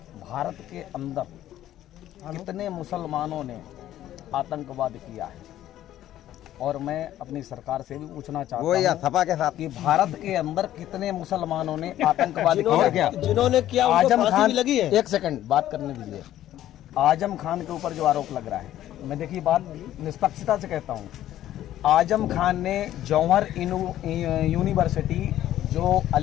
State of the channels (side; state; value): right; quieter; 12.8 dB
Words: भारत के अंदर कितने मुसलमानों ने आतंकवाद किया है, और मैं अपनी सरकार से भी पूछना चाहता हूँ सपा के साथ कि भारत के अंदर कितने मुसलमानों ने आतंकवाद किया क्या? जिन्होंने किया आजम खान लगी है। एक सेकंड बात करने दीजिए। आजम खान के ऊपर जो आरोप लग रहा है, मैं देखिए बात निष्पक्षता से कहता हूँ, आजम खान ने जौहर यूनिवर्सिटी जो